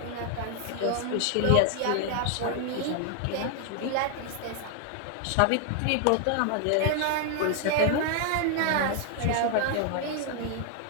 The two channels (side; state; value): both; different; correlation 0.00